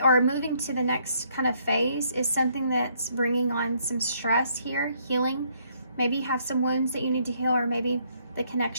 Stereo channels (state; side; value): inverted; both; correlation -0.68